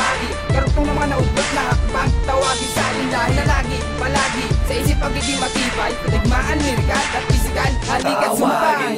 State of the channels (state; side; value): identical; both; correlation 1.00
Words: Karutong ng mga naubot na hakbang. Tawagin sa akin dahil na lagi, palagi sa isip pagiging matibay. Patigmaan, lirikal at pisikal, halikat sumpay.